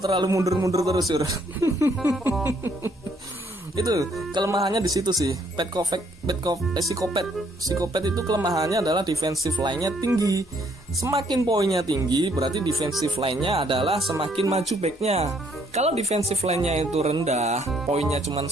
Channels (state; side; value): normal; both; correlation 0.67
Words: mundur-mundur terus cur. Itu kelemahannya di situ sih. Psikopat itu kelemahannya adalah defensive line-nya tinggi. Semakin poinnya tinggi berarti defensive line-nya adalah semakin maju back-nya. Kalau defensive line-nya itu rendah, poinnya cuma